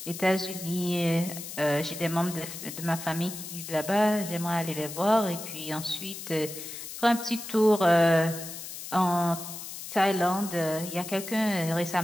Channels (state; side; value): noise; left; hiss, 10 dB below the sound